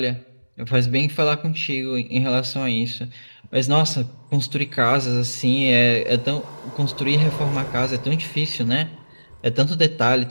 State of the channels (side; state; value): both; inverted; correlation -1.00